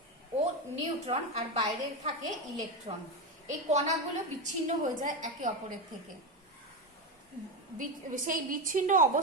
ও নিউট্রন, আর বাইরে থাকে ইলেকট্রন। এই কণাগুলো বিচ্ছিন্ন হয়ে যায় একে অপরের থেকে। সেই বিচ্ছিন্ন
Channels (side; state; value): both; normal; correlation 0.14